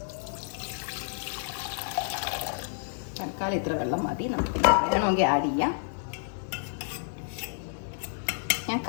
തൽക്കാലം ഇത്ര വെള്ളം മതി. നമുക്ക് വേണമെങ്കിൽ ആഡ് ചെയ്യാം. ഞാൻ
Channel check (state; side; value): silent; right; digital silence